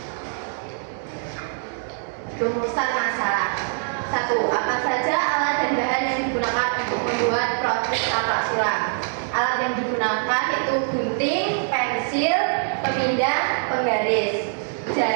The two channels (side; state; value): left; silent; 63 dB below the other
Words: Rumusan masalah. 1. Apa saja alat dan bahan yang digunakan untuk membuat produk taplak sulam? Alat yang digunakan itu gunting, pensil, pemindah, penggaris,